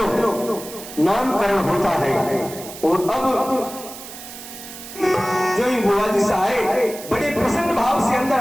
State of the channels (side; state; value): right; noise; hiss, 13 dB below the sound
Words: नामकरण होता है और अब जो ही बुआ जी से आए बड़े प्रसन्न भाव से अंदर